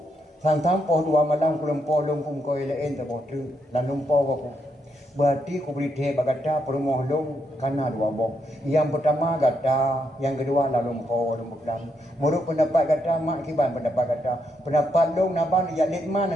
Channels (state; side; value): normal; both; correlation 0.79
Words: sang po dua malam ku lumpo lum pum koi lain ta po tru lan lumpo ko berarti ku beri the bagata perumoh lum kana dua boh yang pertama gata yang kedua la lumpo lum meklang muruk pendapat gata mak kiban pendapat gata pendapat lum naban ya litman